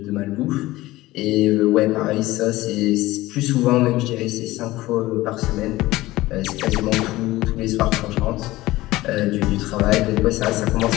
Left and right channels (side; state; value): right; quieter; 18.0 dB